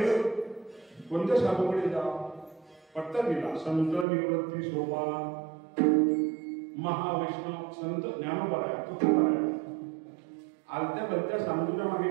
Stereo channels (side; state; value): left; drops out; at 4.0 s